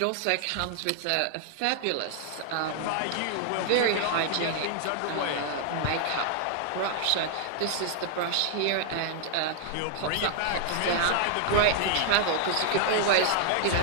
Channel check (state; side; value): different; both; correlation 0.00